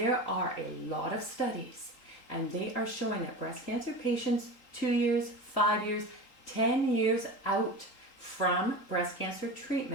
are a lot of studies and they are showing that breast cancer patients 2 years, 5 years, 10 years out from breast cancer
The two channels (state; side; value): late; right; 3.8 ms